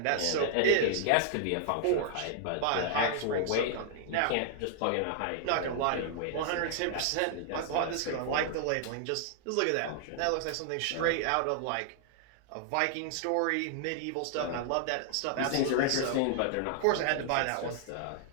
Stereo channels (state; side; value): different; both; correlation -0.01